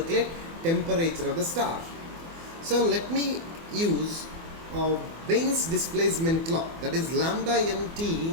temperature of the star. So let me use Bain's displacement law, that is lambda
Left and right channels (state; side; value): late; left; 24 ms